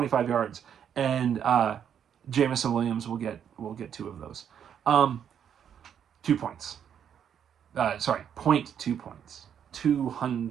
yards, and Jameson Williams will get 2 of those. 2 points. Sorry, 0.2 points.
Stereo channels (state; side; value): quieter; left; 8.6 dB